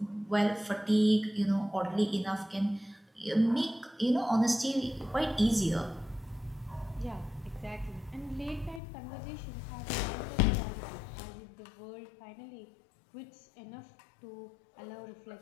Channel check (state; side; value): drops out; right; at 8.8 s